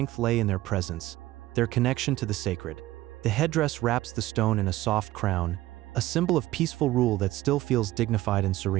lay in their presence, their connection to the sacred. The headdress wraps the stone in a soft crown, a symbol of peaceful rule that still feels dignified and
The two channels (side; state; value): left; quieter; 16.5 dB